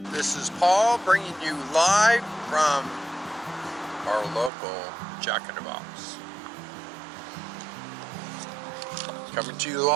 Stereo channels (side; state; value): left; drops out; at 4.5 s